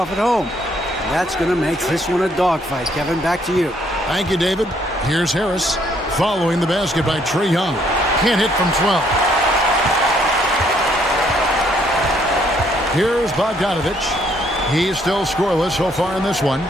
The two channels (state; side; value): normal; both; correlation 0.68